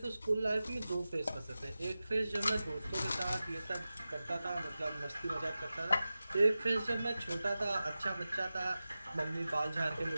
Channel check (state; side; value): inverted; both; correlation -0.95